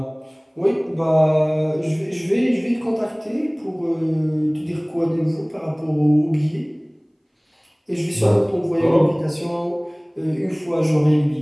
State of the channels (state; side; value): identical; both; correlation 1.00